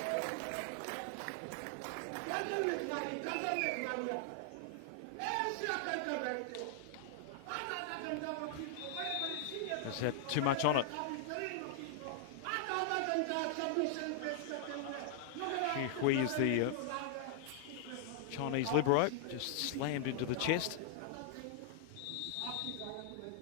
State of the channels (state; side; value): different; both; correlation -0.01